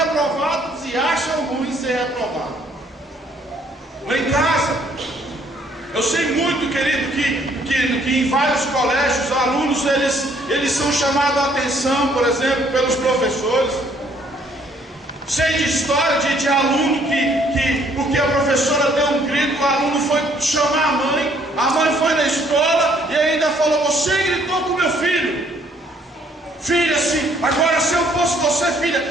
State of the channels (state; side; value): normal; both; correlation 0.64